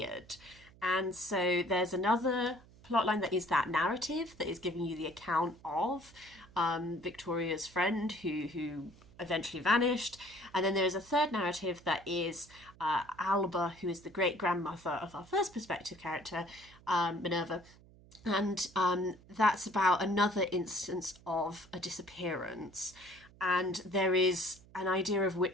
And so there's another plotline that is that narrative that is giving you the account of Victoria's friend who eventually vanished. And then there's a third narrative that is Alba, who is the great-grandmother of our first perspective character, Minerva. And that's about another instance of a disappearance. And there is an idea of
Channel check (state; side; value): noise; right; hum, 24 dB below the sound